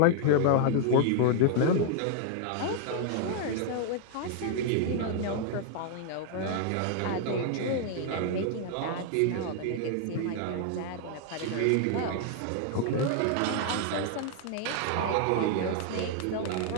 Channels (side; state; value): both; different; correlation 0.00